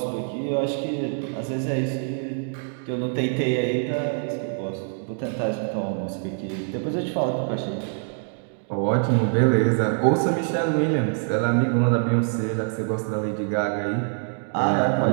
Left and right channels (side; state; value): left; silent; 61 dB below the other